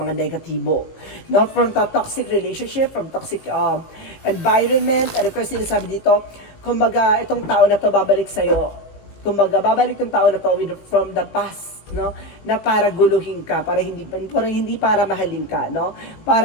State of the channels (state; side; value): late; right; 18 ms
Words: negatibo. Not from the toxic relationship, from toxic environment. And of course, sinasabi dito, kumbaga, itong tao na to babalik sa'yo. Kumbaga, babalik yung tao na to from the past, no? Na para guluhin ka, para hindi para mahalin ka, no?